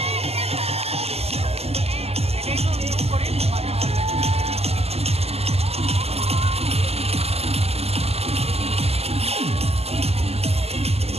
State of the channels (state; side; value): late; left; 0.29 ms